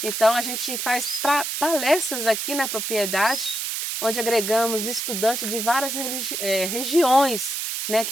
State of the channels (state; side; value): noise; right; hiss, 3 dB below the sound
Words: Então a gente faz palestras aqui na propriedade, onde agregamos estudantes de várias regiões, né,